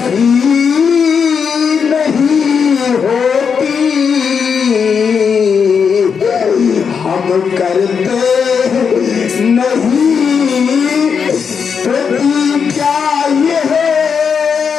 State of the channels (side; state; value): right; quieter; 6.3 dB